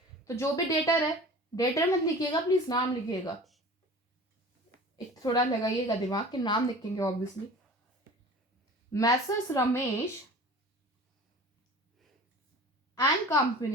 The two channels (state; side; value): normal; both; correlation 0.40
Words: तो जो भी डेटर है, डेटर मत लिखिएगा प्लीज, नाम लिखिएगा. एक थोड़ा लगाइएगा दिमाग के, नाम लिखेंगे obviously. Messrs Ramesh and